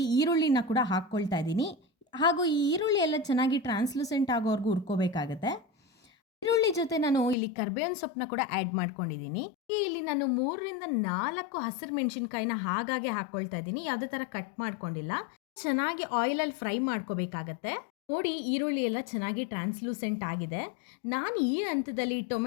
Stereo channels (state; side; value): drops out; right; at 7.4 s